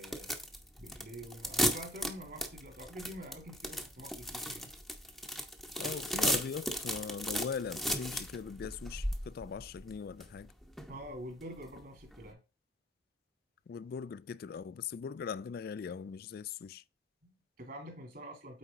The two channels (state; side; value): normal; both; correlation 0.58